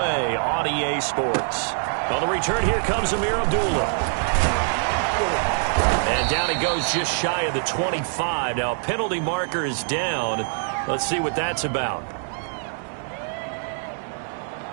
on EA Sports. On the return, here comes Amir Abdullah. And down he goes just shy of the 25. Now, a penalty marker is down. Let's see what that's about.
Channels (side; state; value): left; silent; 61 dB below the other